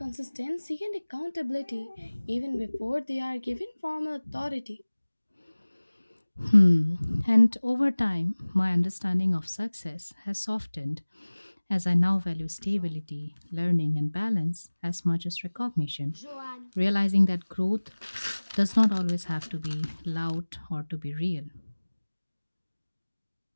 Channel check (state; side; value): inverted; both; correlation -1.00